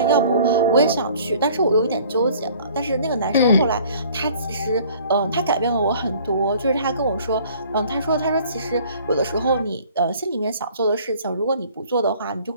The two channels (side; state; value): both; inverted; correlation -0.53